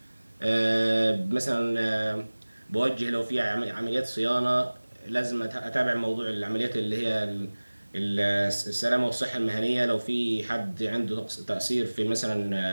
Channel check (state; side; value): inverted; both; correlation -1.00